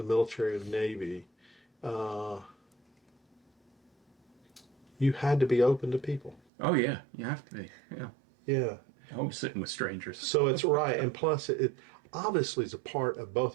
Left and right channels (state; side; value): drops out; left; at 6.4 s